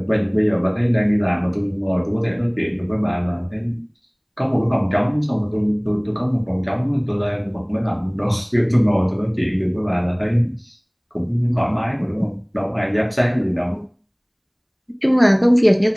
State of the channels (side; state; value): both; identical; correlation 1.00